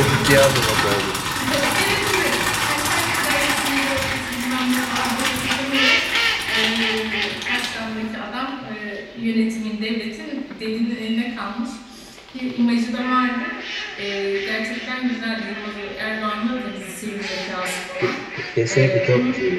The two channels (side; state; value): both; identical; correlation 1.00